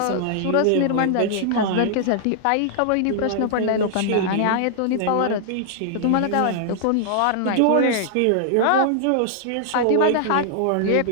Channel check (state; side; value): different; both; correlation -0.01